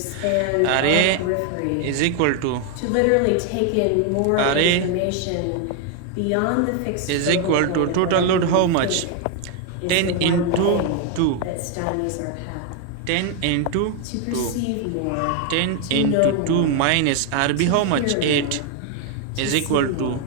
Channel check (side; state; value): both; different; correlation 0.01